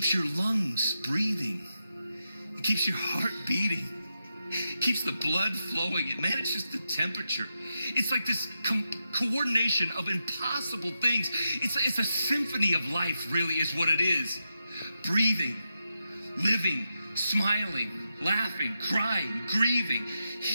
your lungs breathing. It keeps your heart beating. Keeps the blood flowing. It manages the temperature. It's like this coordination of impossible things. It's a symphony of life, really, is what it is. Breathing, living, smiling, laughing, crying, grieving,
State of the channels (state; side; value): inverted; both; correlation -0.86